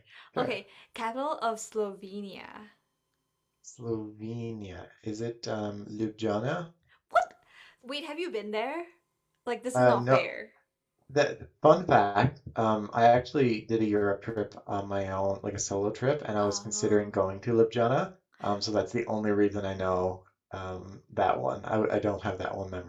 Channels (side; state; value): both; identical; correlation 1.00